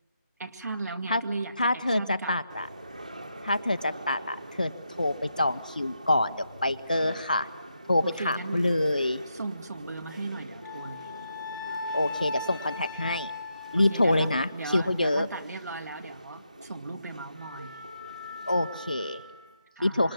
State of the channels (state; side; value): inverted; both; correlation -0.83